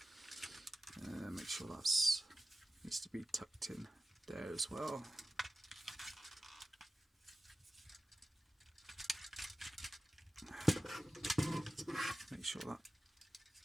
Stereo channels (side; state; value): both; normal; correlation 0.95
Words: Make sure that's needs to be tucked in there as well. Make sure that